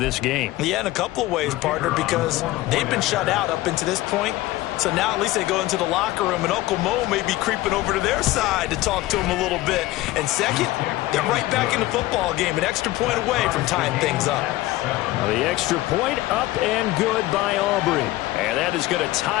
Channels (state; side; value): quieter; right; 17.4 dB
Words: game. Yeah, in a couple of ways, partner, because they've been shut out up until this point. So now at least they go into the locker room, and Uncle Mo may be creeping over to their side to talk to him a little bit. And second, they're right back in the football game, an extra point away from tying things up. The extra point up and good by Aubrey. And that is going to